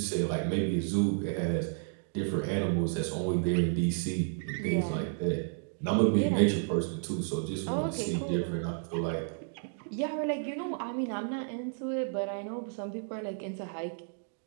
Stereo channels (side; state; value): left; silent; digital silence